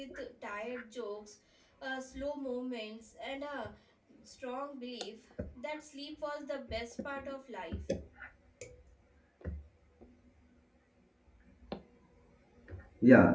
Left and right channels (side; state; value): both; identical; correlation 1.00